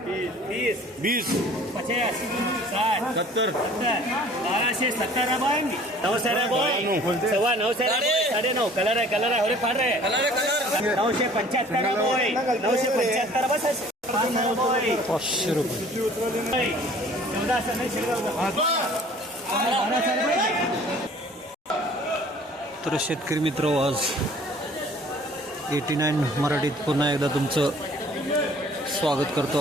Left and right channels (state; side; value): normal; both; correlation 0.51